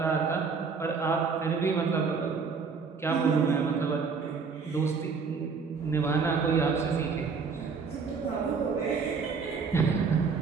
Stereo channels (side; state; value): left; quieter; 5.3 dB